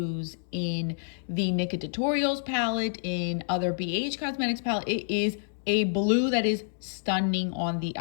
in the Nika Tutorials palette, in other BH Cosmetics palette. It is a blue that is stunning on the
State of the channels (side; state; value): right; silent; digital silence